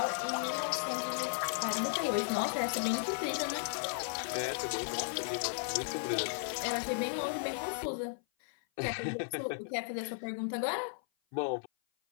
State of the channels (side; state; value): right; silent; 54 dB below the other